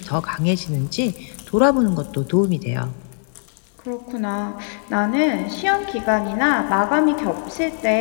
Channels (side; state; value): right; silent; digital silence